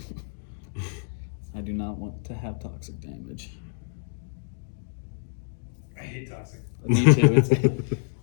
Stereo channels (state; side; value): silent; right; digital silence